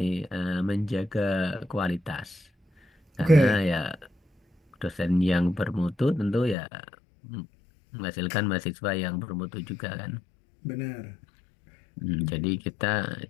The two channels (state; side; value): drops out; right; at 6.6 s